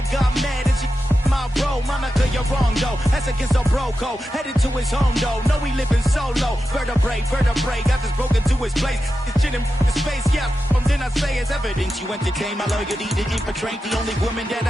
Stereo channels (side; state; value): both; normal; correlation 0.91